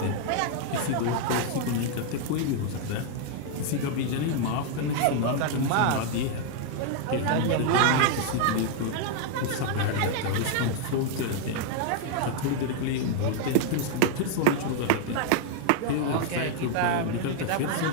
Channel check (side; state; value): both; different; correlation 0.00